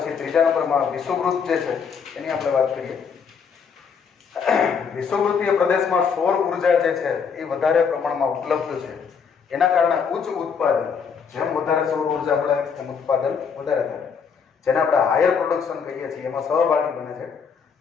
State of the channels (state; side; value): quieter; right; 6.3 dB